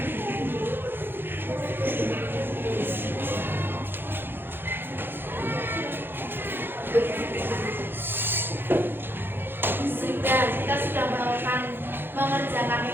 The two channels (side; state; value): left; late; 0.10 ms